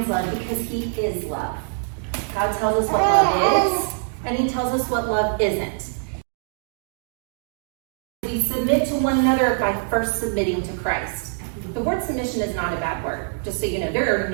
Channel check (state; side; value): silent; left; digital silence